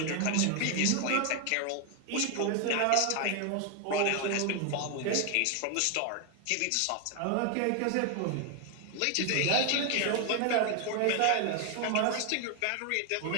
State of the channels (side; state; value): both; different; correlation 0.01